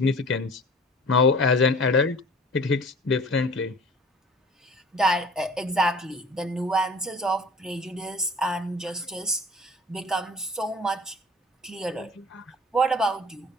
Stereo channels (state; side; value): normal; both; correlation 0.45